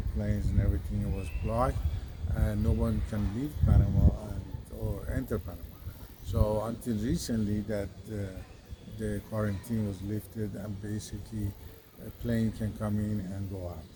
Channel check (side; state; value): both; identical; correlation 1.00